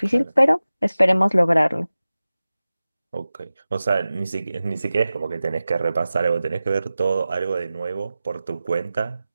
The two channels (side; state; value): both; inverted; correlation -0.95